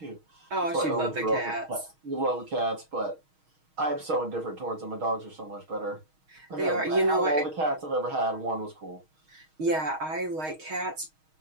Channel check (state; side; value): late; left; 6.4 ms